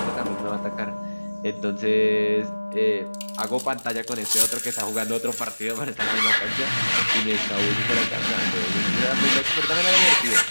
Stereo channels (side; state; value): both; inverted; correlation -1.00